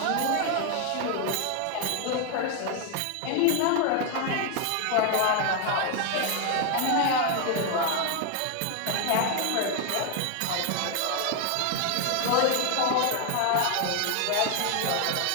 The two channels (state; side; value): different; both; correlation 0.01